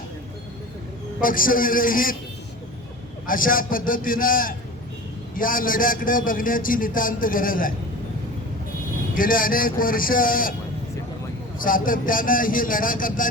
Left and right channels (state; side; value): normal; both; correlation 0.36